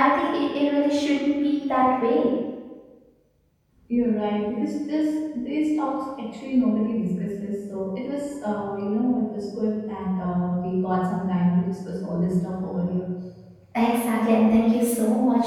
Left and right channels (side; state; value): both; identical; correlation 1.00